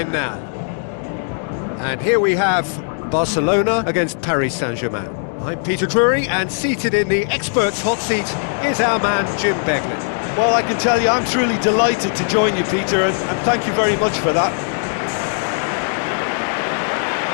now. And here we have Barcelona against Paris Saint-Germain. I'm Peter Drury, and seated in the experts' hot seat is our man Jim Beglin. Well, I can tell you I'm truly delighted to join you, Peter, and thank you very much for that.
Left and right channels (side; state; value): right; silent; 59 dB below the other